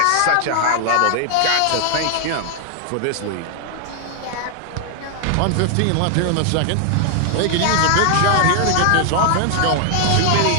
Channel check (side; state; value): both; different; correlation 0.00